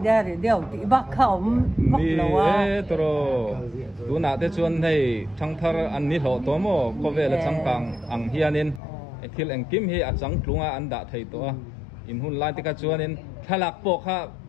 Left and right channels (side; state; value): right; drops out; at 8.8 s